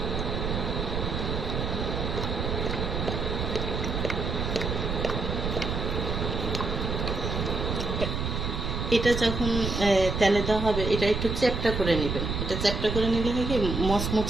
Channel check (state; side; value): noise; right; rumble, 2 dB below the sound